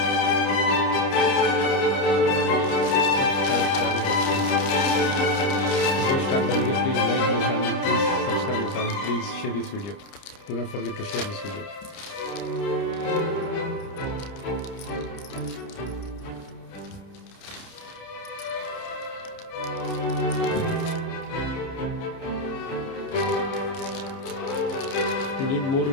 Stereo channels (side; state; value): right; late; 30 ms